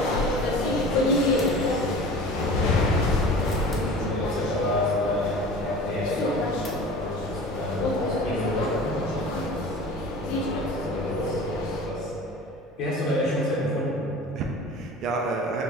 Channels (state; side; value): normal; both; correlation 0.39